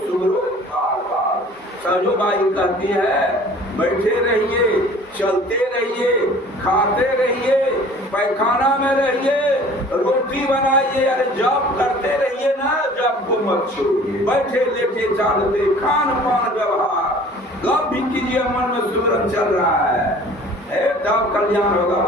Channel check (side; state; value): both; normal; correlation 0.48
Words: सुगरो। सहजो बाई कहती है, बैठे रहिए, चलते रहिए, खाते रहिए, पैखाना में रहिए, रोटी बनाइए, अरे जॉब करते रहिए ना, जॉब को मत छोड़िए। बैठे लेटे चालते खान पान व्यवहार, गप भी कीजिए, मन में सुमरन चल रहा है, तब कल्याण होगा।